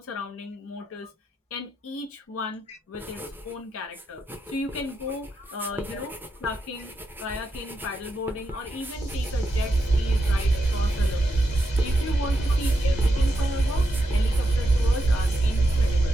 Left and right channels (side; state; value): both; normal; correlation 0.84